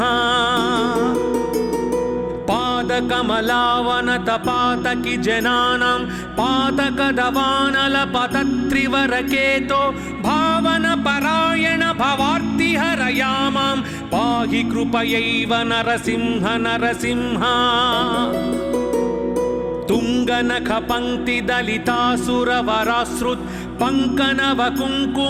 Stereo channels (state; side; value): identical; both; correlation 1.00